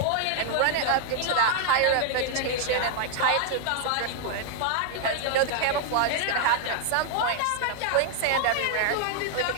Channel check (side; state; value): both; different; correlation 0.00